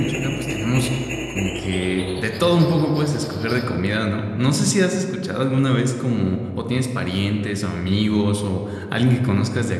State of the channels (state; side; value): identical; both; correlation 1.00